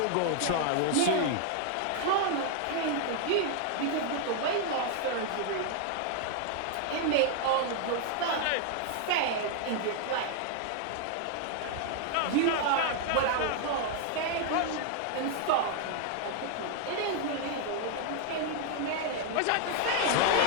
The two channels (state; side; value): different; both; correlation 0.00